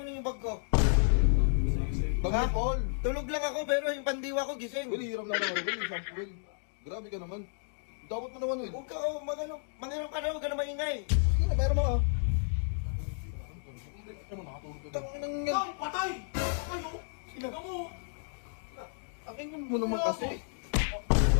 yung bag ko? Bag ni Paul. Tulog lang ako pero yung pandiwa ko gising. Well, hiram na lang ako, Will. Isang Will. Grabe ka naman. Dapat mo naman, Will. Huwag ka, mangiram ka na, huwag ka na maingay. Sige na, meron mo ka. Tangin ng yan. Ay, patay! Kayo! Sino mo? Akin mo naman kasi.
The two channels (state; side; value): silent; right; digital silence